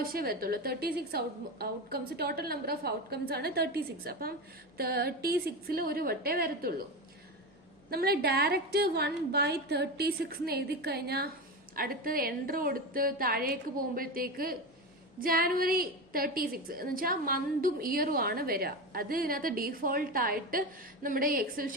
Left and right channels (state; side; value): normal; both; correlation 0.21